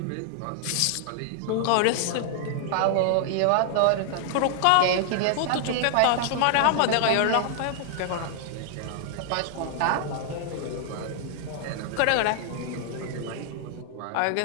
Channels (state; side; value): different; both; correlation 0.00